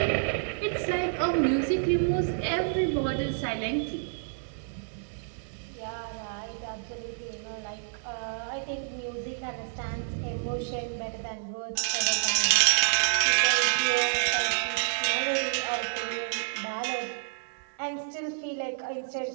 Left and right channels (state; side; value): silent; left; digital silence